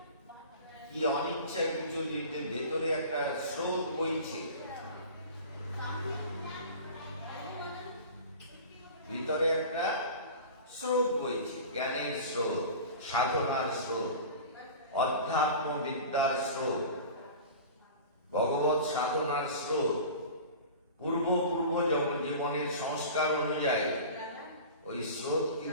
কি অনিচ্ছা কিছু নিতে ভেতরে একটা স্রোত বইছে, ভিতরে একটা স্রোত বইছে, জ্ঞানের স্রোত, সাধনার স্রোত, অধ্যাত্ম বিদ্যার স্রোত, ভগবত সাধনার স্রোত, পূর্ব জীবনের সংস্কার অনুযায়ী ওই স্রোত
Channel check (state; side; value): inverted; both; correlation -0.37